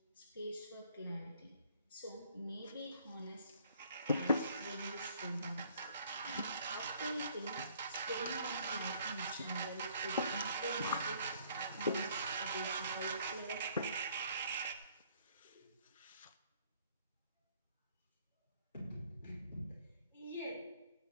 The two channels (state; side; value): inverted; both; correlation -0.61